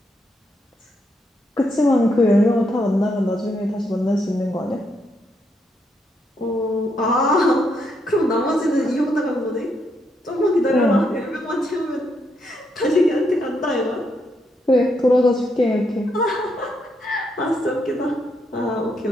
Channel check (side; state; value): both; normal; correlation 0.78